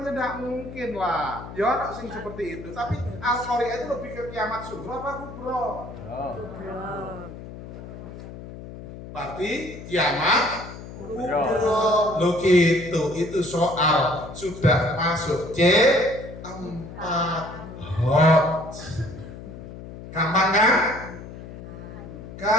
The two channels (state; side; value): noise; left; hum, 13 dB below the sound